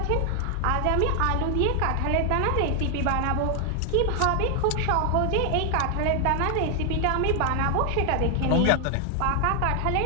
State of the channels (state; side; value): different; both; correlation 0.00